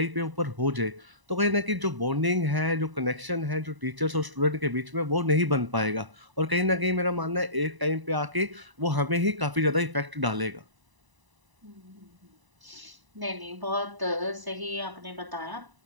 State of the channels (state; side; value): late; left; 1.0 ms